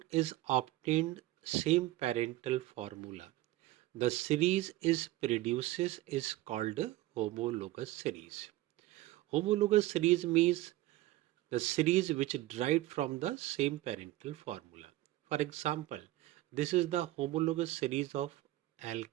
is obtained same parental formula, the series is called homologous series. Homologous series means the series which derived from the same parental formula. For example, this is the homologous series of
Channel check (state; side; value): quieter; left; 17.0 dB